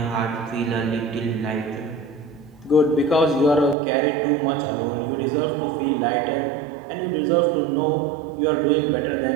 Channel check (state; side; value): drops out; left; at 3.8 s